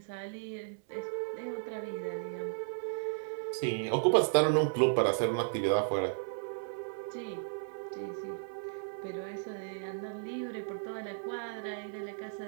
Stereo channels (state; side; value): silent; left; 55 dB below the other